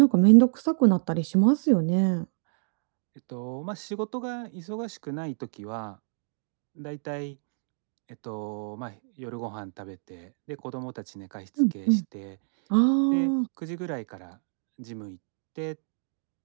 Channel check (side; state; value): left; silent; digital silence